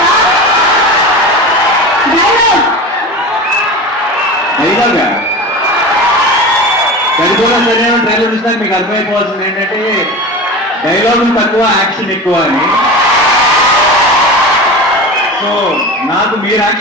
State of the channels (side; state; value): both; normal; correlation 0.30